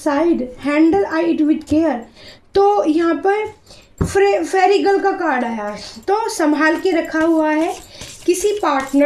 handle I it with care. तो यहाँ पर फेरिगल का कार्ड आया है, तो संभाल के रखा हुआ है किसी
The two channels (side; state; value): both; identical; correlation 1.00